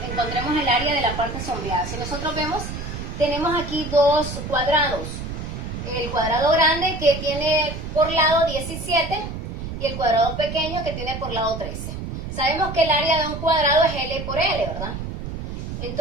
encontremos el área de la parte sombreada. Si nosotros vemos, tenemos aquí dos cuadrados. el cuadrado grande que tiene por lado 17 y el cuadrado pequeño que tiene por lado 13. Sabemos que el área de un cuadrado es L por L, ¿verdad?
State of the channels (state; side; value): noise; right; rumble, 7 dB below the sound